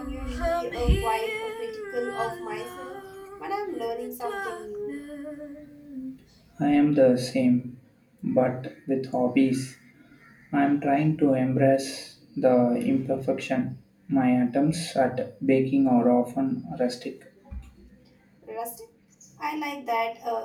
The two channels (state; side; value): identical; both; correlation 1.00